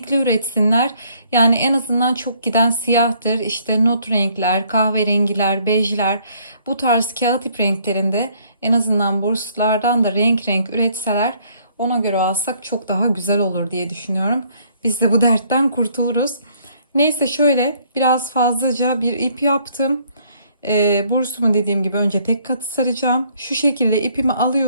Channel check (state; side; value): inverted; both; correlation -0.64